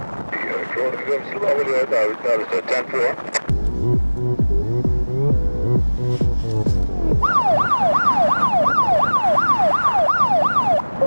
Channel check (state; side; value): inverted; both; correlation -1.00